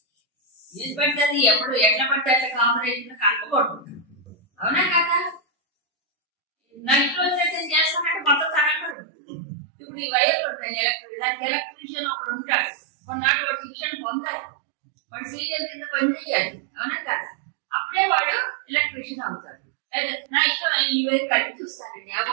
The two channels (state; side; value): drops out; left; at 9.0 s